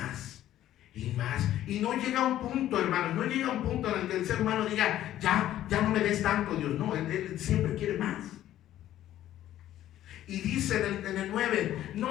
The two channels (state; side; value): quieter; right; 12.8 dB